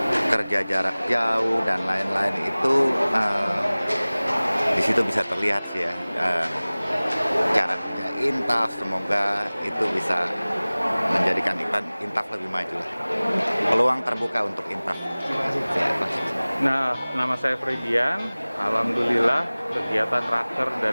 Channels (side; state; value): both; inverted; correlation -0.99